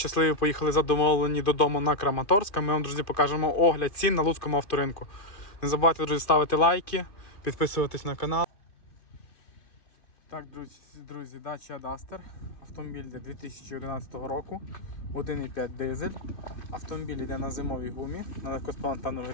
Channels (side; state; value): right; late; 2.6 ms